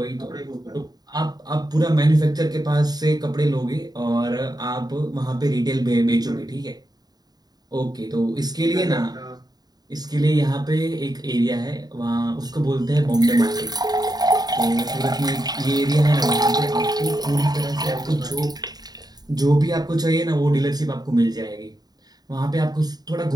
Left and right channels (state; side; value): late; left; 0.19 ms